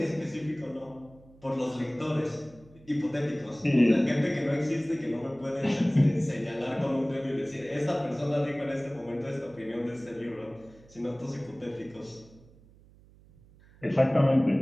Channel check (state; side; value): noise; right; hum, 25 dB below the sound